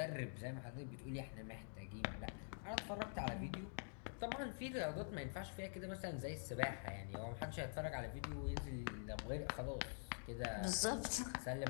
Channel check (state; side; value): silent; right; digital silence